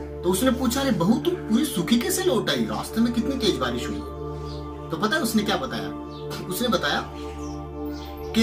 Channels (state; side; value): identical; both; correlation 1.00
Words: तो उसने पूछा, अरे बहू तुम पूरी सूखी कैसे लौट आई? रास्ते में कितनी तेज बारिश हुई है। तो पता है उसने क्या बताया? उसने बताया